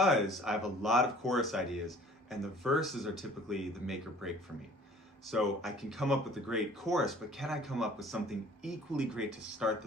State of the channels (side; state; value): both; normal; correlation 0.51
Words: I have a lot of chorus ideas, and the verses are typically the make or break for me. So I can come up with a great chorus, but can I come up with something equally great to start